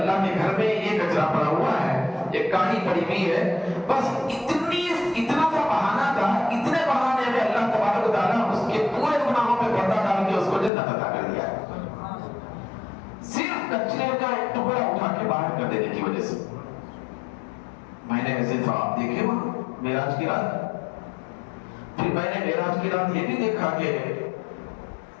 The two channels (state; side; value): drops out; right; at 10.7 s